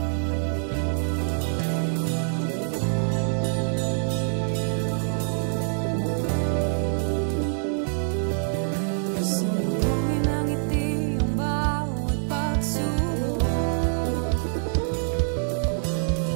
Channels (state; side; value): silent; left; 61 dB below the other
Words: Sumuhin ang ngiti ang bawat pagsubok.